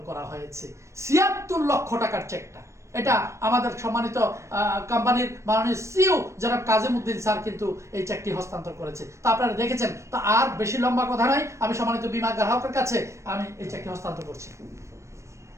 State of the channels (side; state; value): left; late; 0.14 ms